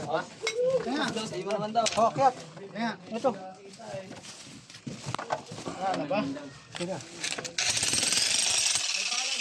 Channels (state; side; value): identical; both; correlation 1.00